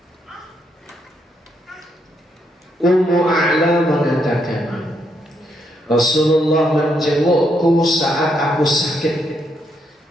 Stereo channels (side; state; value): both; normal; correlation 0.77